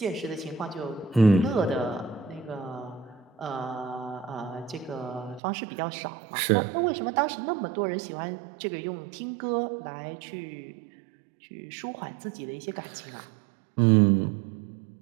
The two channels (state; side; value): drops out; left; at 5.4 s